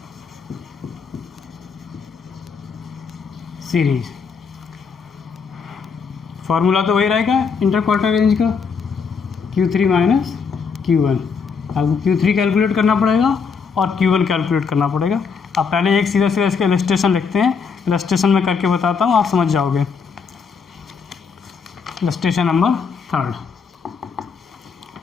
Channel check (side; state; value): right; quieter; 5.7 dB